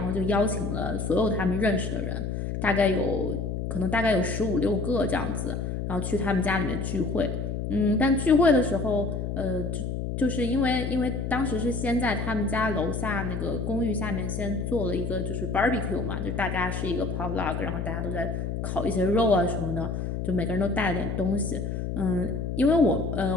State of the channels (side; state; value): left; noise; hum, 3 dB below the sound